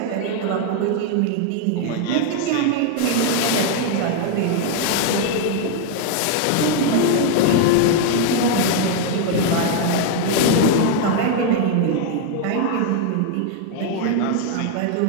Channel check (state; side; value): different; both; correlation 0.00